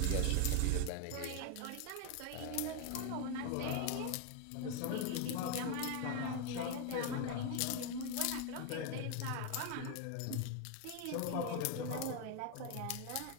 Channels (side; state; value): both; different; correlation 0.01